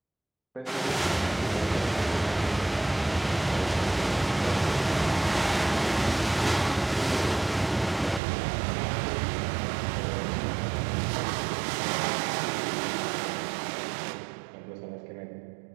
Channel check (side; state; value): left; drops out; at 8.2 s